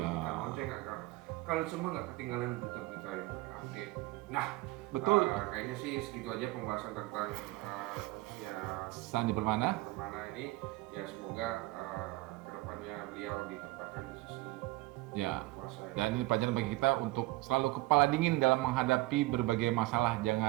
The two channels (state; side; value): quieter; left; 19.9 dB